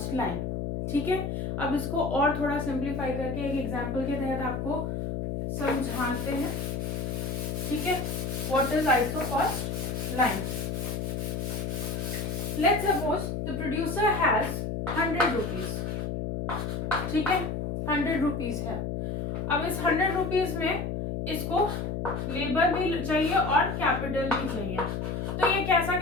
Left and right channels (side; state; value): left; noise; hum, 2 dB below the sound